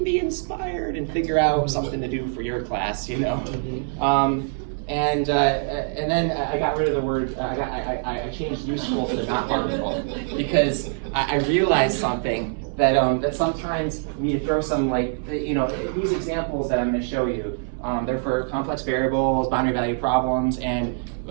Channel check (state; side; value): silent; left; digital silence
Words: inspired and figure out something to do for your class, you know. And then I got rid of the word. I changed useful to not harmful, because I realized something that that sometimes you need to throw some, like, you know, these examples that I'm going to show you. They're for complex variables, boundary value problems, and